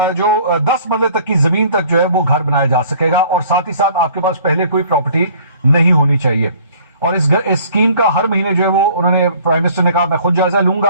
جو 10 مرلے تک کی زمین تک جو ہے وہ گھر بنایا جا سکے گا, اور ساتھ ہی ساتھ آپ کے پاس پہلے کوئی پراپرٹی نہیں ہونی چاہیے. اور اس اسکیم کا ہر مہینے جو ہے وہ انہوں نے پرائم منسٹر نے کہا میں خود جائزہ لوں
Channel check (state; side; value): inverted; both; correlation -0.53